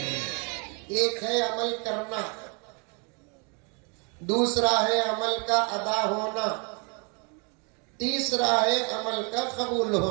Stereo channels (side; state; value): left; quieter; 34.5 dB